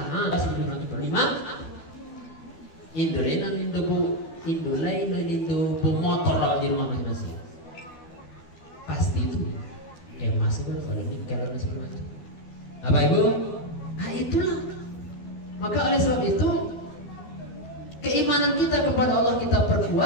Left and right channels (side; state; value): right; late; 12 ms